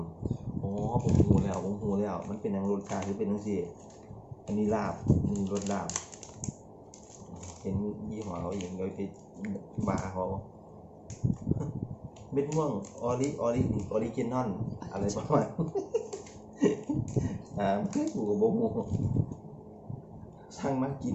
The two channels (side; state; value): both; identical; correlation 1.00